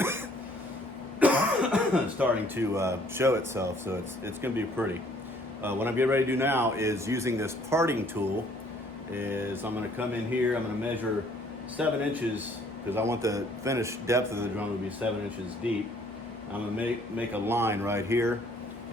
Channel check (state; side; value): normal; both; correlation 0.60